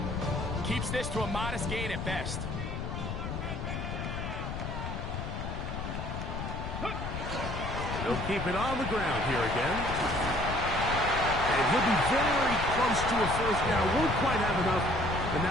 Keeps this to a modest gain at best. They'll keep it on the ground here again. And he'll be very close to a first down. Won't quite have enough, but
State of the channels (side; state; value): left; noise; rumble, 5 dB below the sound